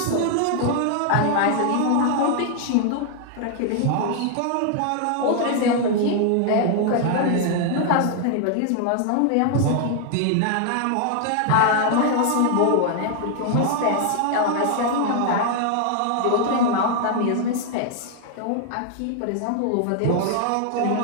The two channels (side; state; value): both; different; correlation 0.00